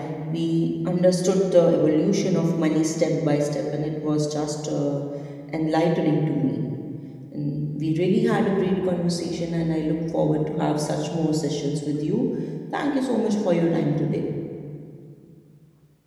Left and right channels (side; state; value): both; identical; correlation 1.00